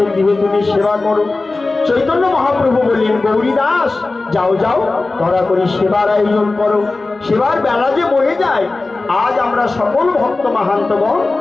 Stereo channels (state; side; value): quieter; right; 3.4 dB